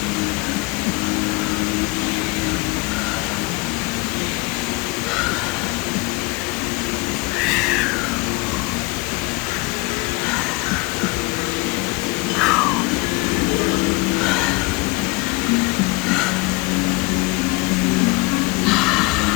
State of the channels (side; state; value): right; quieter; 23.6 dB